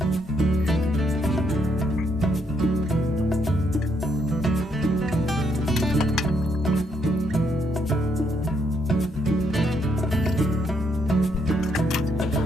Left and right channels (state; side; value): normal; both; correlation 0.74